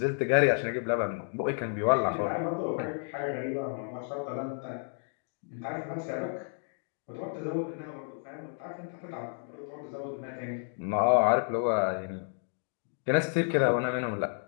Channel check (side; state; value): right; silent; 57 dB below the other